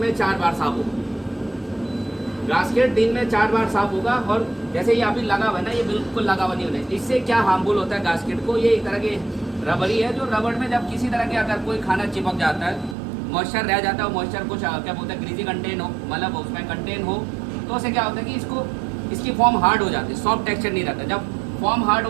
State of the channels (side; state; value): left; drops out; at 13.0 s